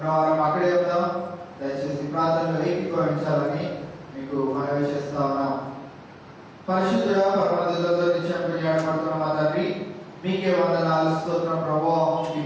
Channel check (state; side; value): identical; both; correlation 1.00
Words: అక్కడే ఉందాం. దయచేసి ప్రార్థనలు ఏకీభవించాలని మీకు మనవి చేస్తా ఉన్నాం. పరిశుద్ధుడా పరమదిలో నిత్యం కొనియాడబడుతున్న మా తండ్రి, మీకే వందనాలు స్తోత్రం ప్రభువా. ఈ